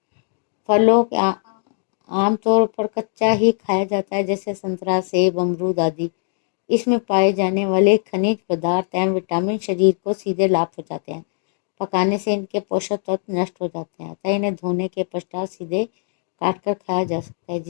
फलों के आमतौर पर कच्चा ही खाया जाता है, जैसे संतरा, सेब, अमरूद आदि। इसमें पाए जाने वाले खनिज पदार्थ एवं विटामिन शरीर को सीधे लाभ पहुंचाते हैं। पकाने से इनके पोषक तत्व नष्ट हो जाते हैं, अतः इन्हें धोने के पश्चात सीधे काट कर खाया जा सकता है,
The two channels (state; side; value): silent; right; digital silence